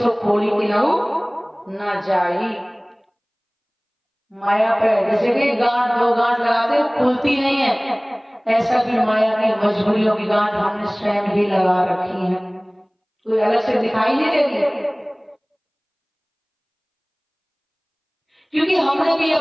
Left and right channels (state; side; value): identical; both; correlation 1.00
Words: खोली की न जाई। माया पे जैसे कि गांठ दो गांठ लगाते खुलती नहीं है, ऐसा भी माया की मजबूरियों की गांठ हमने स्वयं ही लगा रखी है, कोई अलग से दिखाई नहीं देती। क्योंकि हमने भी